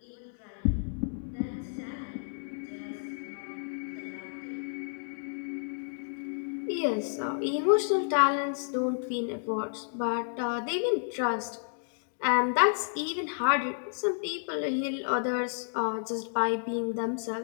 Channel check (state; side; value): silent; right; digital silence